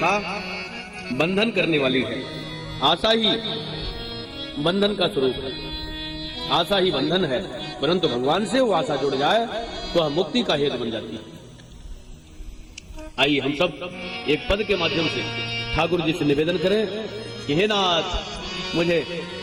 बंधन करने वाली है। आशा ही बंधन का स्वरूप है, आशा ही बंधन है। परंतु भगवान से वो आशा जुड़ जाए तो हम मुक्ति का हेतु बन जाती है। आइए हम सब एक पद के माध्यम से ठाकुर जी से निवेदन करें कि हे नाथ, मुझे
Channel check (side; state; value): both; identical; correlation 1.00